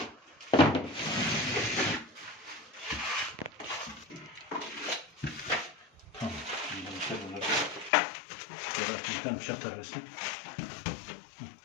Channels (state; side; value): drops out; right; at 7.9 s